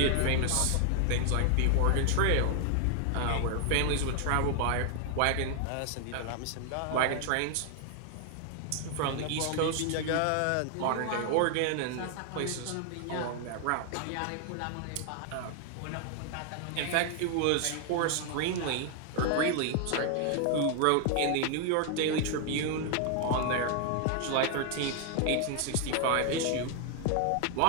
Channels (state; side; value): different; both; correlation 0.00